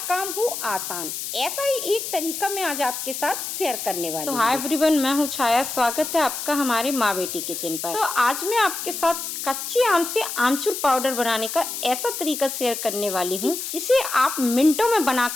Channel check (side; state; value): left; noise; hiss, 5 dB below the sound